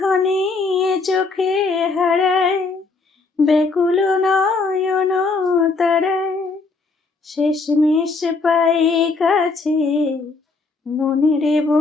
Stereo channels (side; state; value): right; quieter; 4.0 dB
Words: চোখে হারায় ব্যাকুল নয়ন তারায়, শেষমেশ পাই কাছে মনের